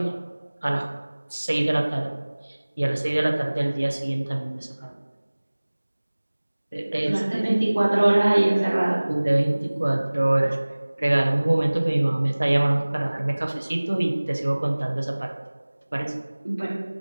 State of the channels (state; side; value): inverted; both; correlation -1.00